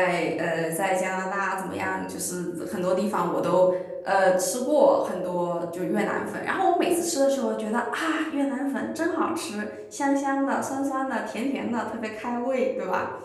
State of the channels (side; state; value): both; identical; correlation 1.00